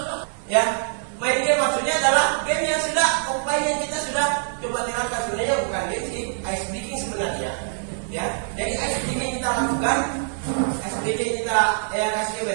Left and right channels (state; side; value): silent; left; 58 dB below the other